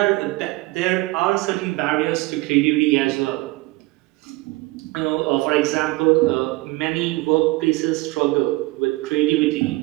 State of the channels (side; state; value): left; quieter; 21.6 dB